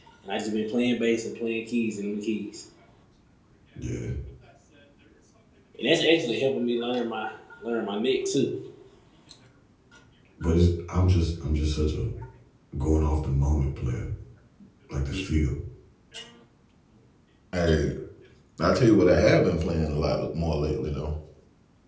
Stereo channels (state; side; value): identical; both; correlation 1.00